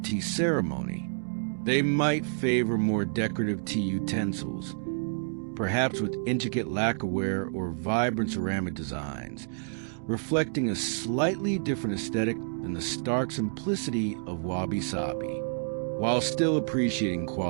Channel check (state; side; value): silent; left; digital silence